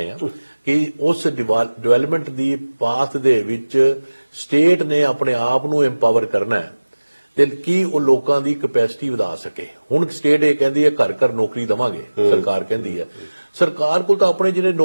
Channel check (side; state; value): both; inverted; correlation -1.00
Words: ਆ, ਕਿ ਉਸ ਡਿਵੈਲਪਮੈਂਟ ਦੀ ਪਾਥ ਦੇ ਵਿੱਚ ਸਟੇਟ ਨੇ ਆਪਣੇ ਆਪ ਨੂੰ ਐਮਪਾਵਰ ਕਰਨਾ ਹੈ, ਤੇ ਕੀ ਉਹ ਲੋਕਾਂ ਦੀ ਕੈਪੈਸਿਟੀ ਵਧਾ ਸਕੇ। ਹੁਣ ਸਟੇਟ ਇਹ ਕਹਿੰਦੀ ਹੈ ਘਰ ਘਰ ਨੌਕਰੀ ਦੇਵਾਂਗੇ, ਸਰਕਾਰ ਕਹਿੰਦੀ ਹੈ। ਸਰਕਾਰ ਕੋਲ ਤਾਂ ਆਪਣੇ ਜਿਹੜੇ